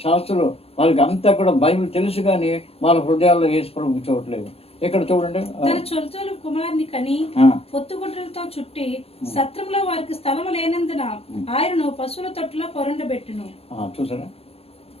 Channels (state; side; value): late; right; 0.29 ms